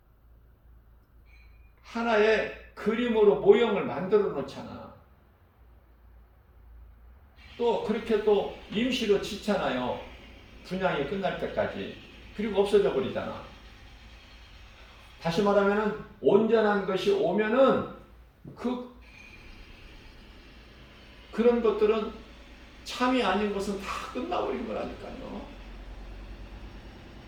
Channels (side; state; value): both; identical; correlation 1.00